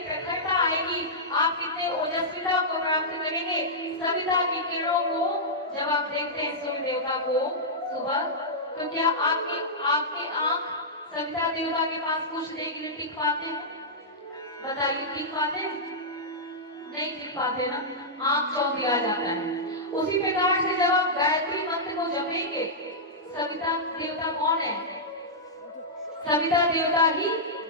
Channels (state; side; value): normal; both; correlation -0.11